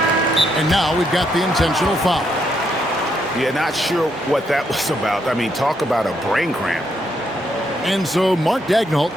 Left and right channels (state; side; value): normal; both; correlation 0.76